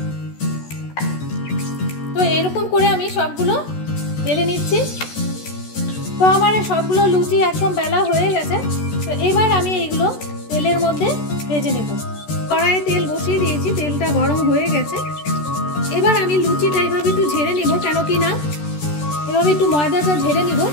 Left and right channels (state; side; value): late; right; 14 ms